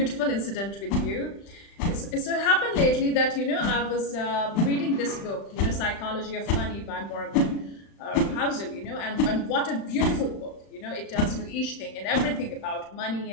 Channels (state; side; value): late; right; 35 ms